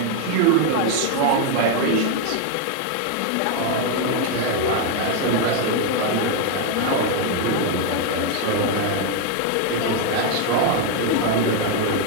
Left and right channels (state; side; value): different; both; correlation 0.01